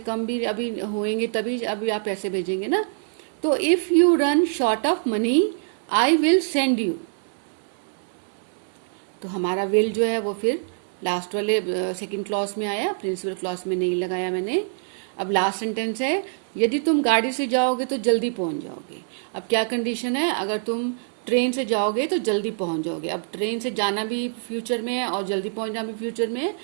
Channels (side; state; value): left; silent; digital silence